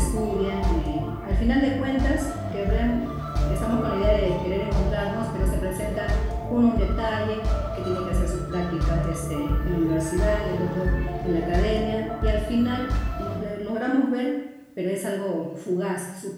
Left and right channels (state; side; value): identical; both; correlation 1.00